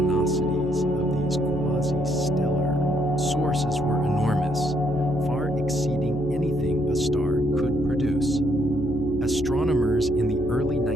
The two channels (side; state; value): left; noise; hum, 10 dB below the sound